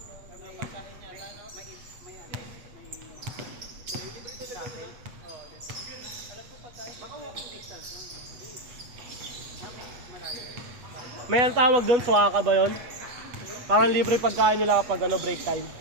May ang tawag doon, suwaka ba yun? Parang libre pagkain nila kapag ano, break time.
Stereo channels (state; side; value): late; left; 8.2 ms